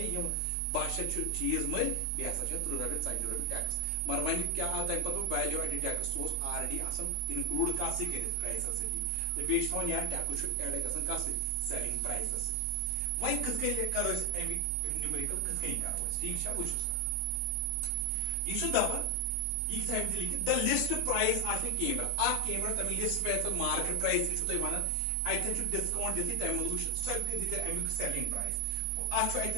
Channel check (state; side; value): different; both; correlation 0.00